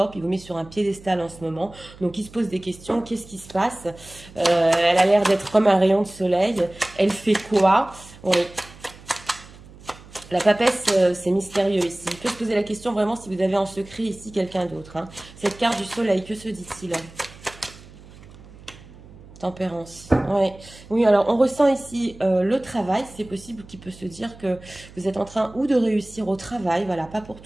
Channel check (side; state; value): right; noise; hum, 20 dB below the sound